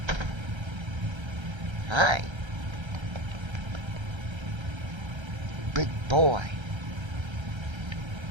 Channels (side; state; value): left; late; 1.3 ms